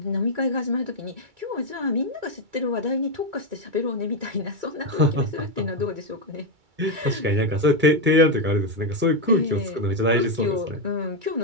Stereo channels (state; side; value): late; left; 2.3 ms